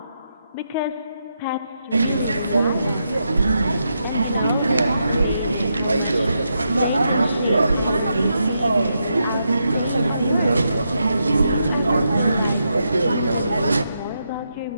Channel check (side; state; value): both; inverted; correlation -0.83